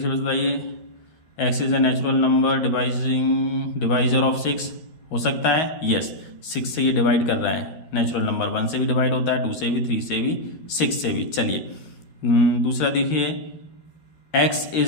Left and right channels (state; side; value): late; right; 13 ms